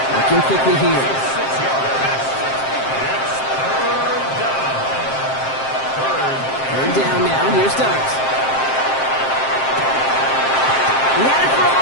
Working quickly here. Third down now, here's Dart. He had it for a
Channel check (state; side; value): late; right; 7.6 ms